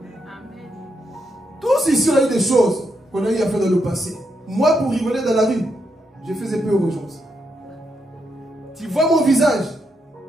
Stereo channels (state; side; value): normal; both; correlation 0.80